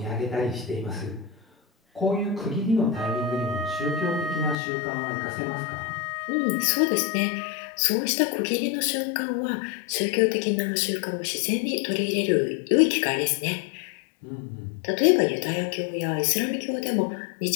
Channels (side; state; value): right; drops out; at 4.5 s